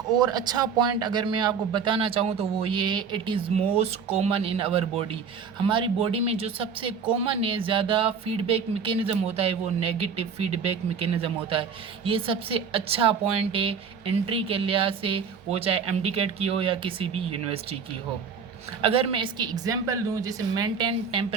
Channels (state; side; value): quieter; left; 6.2 dB